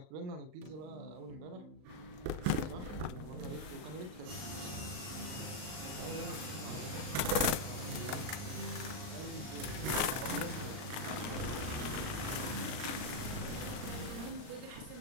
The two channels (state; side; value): late; left; 39 ms